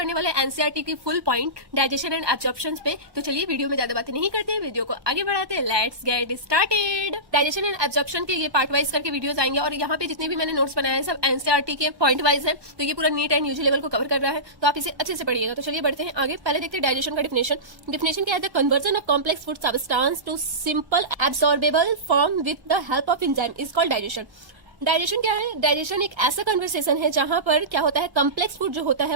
वाले एनसीईआरटी की full point digestion and absorption पे. तो चलिए वीडियो में ज्यादा बातें नहीं करते हैं, वीडियो को आगे बढ़ाते हैं. Let's get started. Digestion and absorption के ये पार्ट वाइज करके वीडियोस आएंगे और यहाँ पे जितने भी मैंने नोट्स बनाए हैं सब एनसीईआरटी के पॉइंट वाइज है. तो ये पूरा नीट एंड यूजी लेवल को कवर कर रहा है, तो आप इसे अच्छे से पढ़िएगा. तो चलिए बढ़ते हैं आगे. पहले देखते हैं डाइजेशन का डिफिनेशन क्या है. The conversion of complex food substance to simple absorbable form with the help of enzyme is called digestion. Digestion क्या है? डाइजेशन एक ऐसा कन्वर्सेशन है जहां पर क्या होता है, कॉम्प्लेक्स फूड जो होता है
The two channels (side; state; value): left; late; 1.1 ms